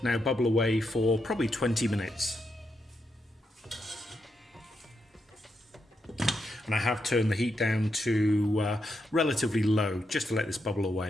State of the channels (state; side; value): normal; both; correlation 0.83